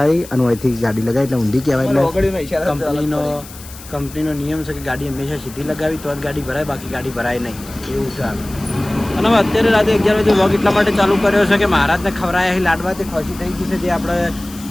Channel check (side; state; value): left; noise; hiss, 17 dB below the sound